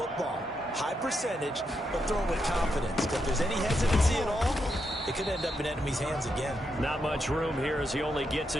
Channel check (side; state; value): both; normal; correlation 0.82